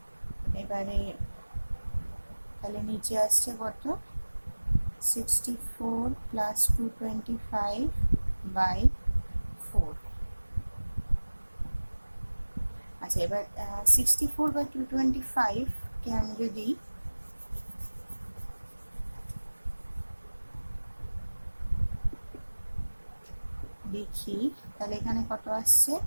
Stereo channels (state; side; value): inverted; both; correlation -1.00